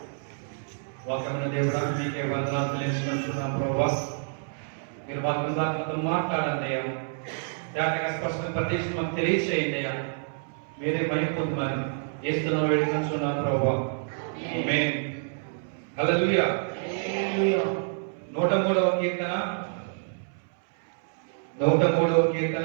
వాక్యమైన దేవుడా మీకే వందనాలు తెలియజేస్తున్నాం ప్రభా. మీరు వాక్యం దాంతో మాట్లాడండి అయ్యా. దానికి స్పష్టంగా ప్రత్యక్ష మాకు తెలియచేయండి అయ్యా. మీరే మహిమపొందమని యేసునామములో వేడుకుంటున్నాం ప్రభా. ఆమేన్. హల్లెలూయా. 103వ కీర్తన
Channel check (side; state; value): left; silent; 60 dB below the other